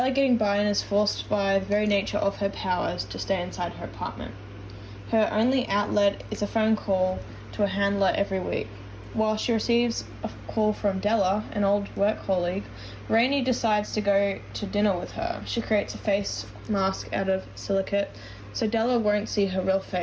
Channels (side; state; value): both; identical; correlation 1.00